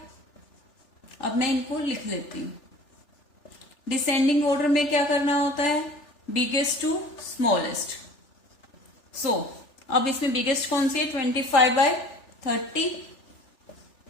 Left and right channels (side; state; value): right; late; 3.4 ms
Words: अब मैं इनको लिख लेती हूँ। डिसेंडिंग ऑर्डर में क्या करना होता है, बिगेस्ट टू स्मॉलेस्ट। सो अब इसमें बिगेस्ट कौन सी है, 25/30।